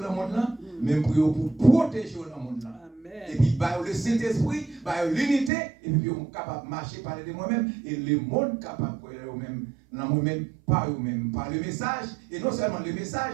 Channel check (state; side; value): drops out; left; at 5.5 s